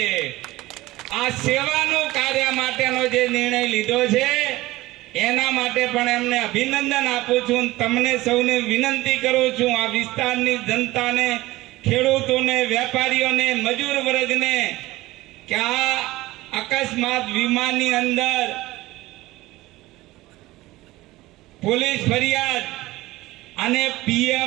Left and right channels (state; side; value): quieter; left; 18.5 dB